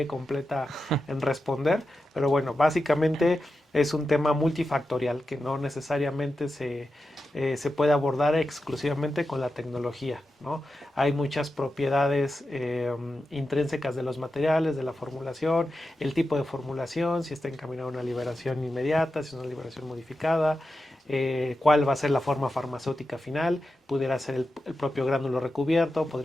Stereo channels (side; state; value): both; normal; correlation 0.90